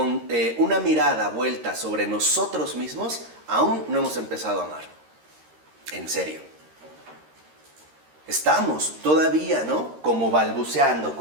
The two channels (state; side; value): late; left; 13 ms